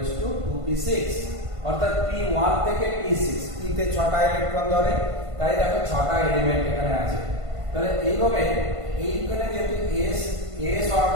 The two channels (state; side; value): late; left; 1.5 ms